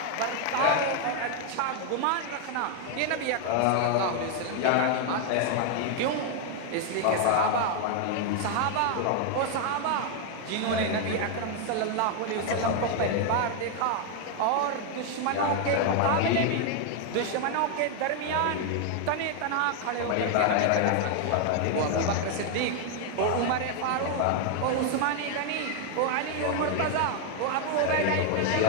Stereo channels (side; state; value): both; different; correlation 0.00